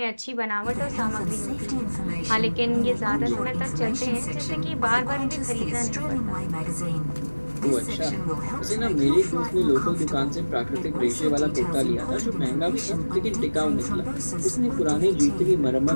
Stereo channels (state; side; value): inverted; both; correlation -1.00